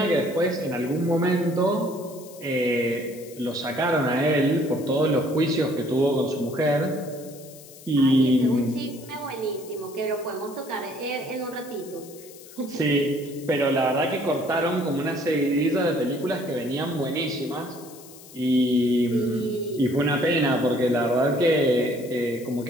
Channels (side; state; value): left; noise; hiss, 20 dB below the sound